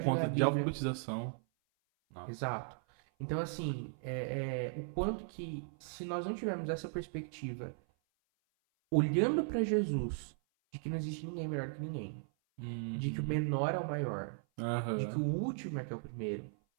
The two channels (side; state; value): left; silent; 53 dB below the other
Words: de ler conta a de Bíblia. alfabetização. Não. Exato. Então, assim, o quanto que, se nós não tivermos essa perspectiva, olhando para Jesus, de que não existe ninguém melhor que ninguém, de que o Uhum. menor é o maior, de que o Aham. último é que é o primeiro,